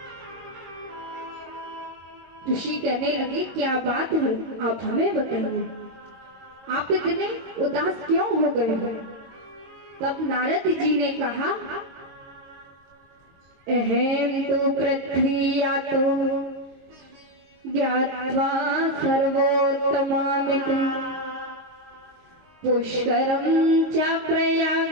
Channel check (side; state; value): left; late; 22 ms